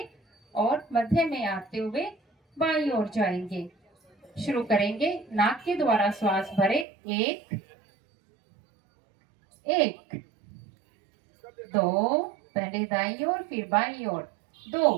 और मध्य में आते हुए बाईं ओर जाएंगे। शुरू करेंगे। नाक के द्वारा श्वास भरे। एक, एक, दो, पहले दाईं ओर फिर बाईं ओर, दो,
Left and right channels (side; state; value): left; drops out; at 6.9 s